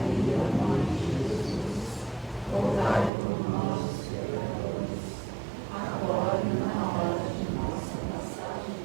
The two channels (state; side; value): drops out; left; at 3.1 s